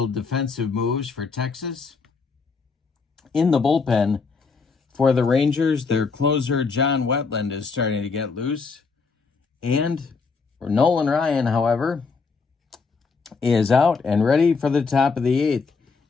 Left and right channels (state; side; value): quieter; right; 4.8 dB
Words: defensive moves for Texas. In the bullpen for the Rangers, their closer John Wetland is starting to get loose. And Nolan Ryan, however, is out and ready for the top of the 8th.